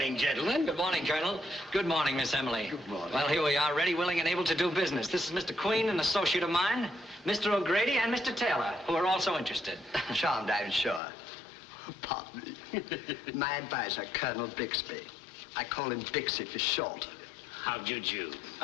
gentlemen. Good morning, Colonel. Good morning, Miss Emily. Good morning. Well, here we are, ready, willing, and able to do business. This is Mr. Queen, an associate of mine, Mr. O'Grady, and Mr. Taylor, who are also interested. Charmed, I'm sure. Pardon me. My advisor, Colonel Bixby. I call him Bixie for short. How'd you do?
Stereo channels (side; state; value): right; drops out; at 11.0 s